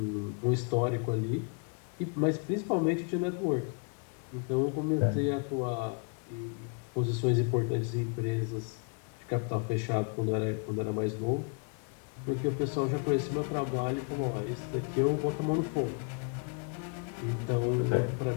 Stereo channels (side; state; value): right; quieter; 38.3 dB